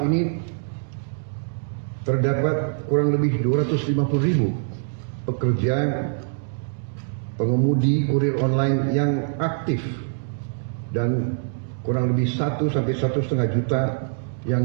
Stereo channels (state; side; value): silent; left; digital silence